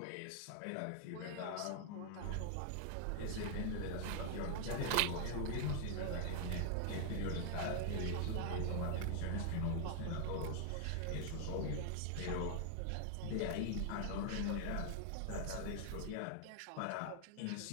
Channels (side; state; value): both; different; correlation 0.00